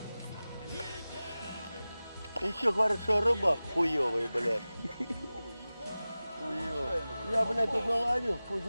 Еще говорят, что рыба хуёвая, блядь. Хуёвая. Я, блядь, тут наловил, хуй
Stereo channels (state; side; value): inverted; both; correlation -0.97